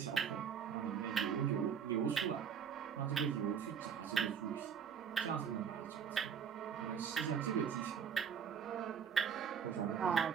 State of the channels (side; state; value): left; quieter; 7.4 dB